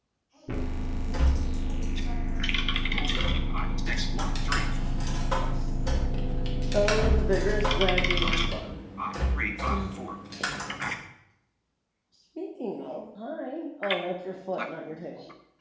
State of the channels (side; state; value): both; identical; correlation 1.00